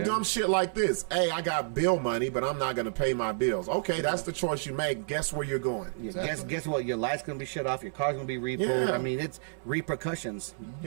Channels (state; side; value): silent; left; 58 dB below the other